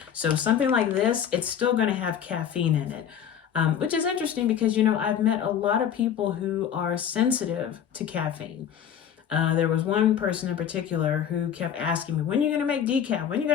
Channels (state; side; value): quieter; right; 8.8 dB